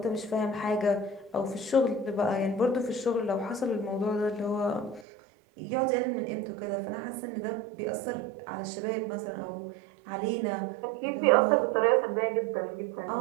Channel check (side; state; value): left; drops out; at 5.1 s